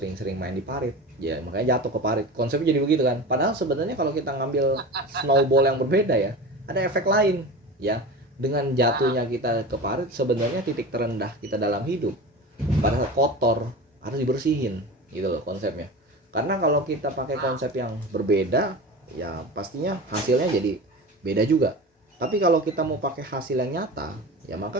main di parit, ya makanya jatuh ke parit. Konsepnya jadi begitu kan. Padahal sebenarnya kalau kita ngambil snowball yang berbeda ya, ada efek lain ya. Dengan jatuhnya kita ke parit, sebenarnya titik terendah kita dalam hidup pada saat kotor harus dibersihin gitu loh konsepnya. Karena kalau kita pakai konsep yang berbeda, ya pastinya hasilnya jadi beda juga. Tapi kalau kita mau pakai hasil yang nyata, ya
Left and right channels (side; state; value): both; normal; correlation 0.31